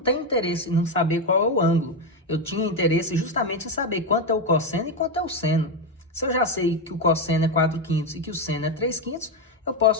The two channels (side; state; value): both; normal; correlation 0.08